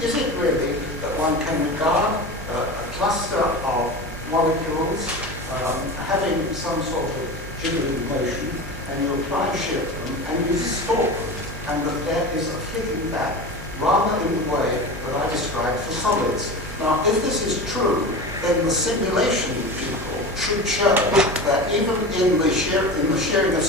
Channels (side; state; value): both; normal; correlation 0.29